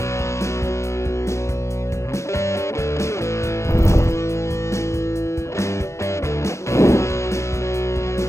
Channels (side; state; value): right; late; 0.14 ms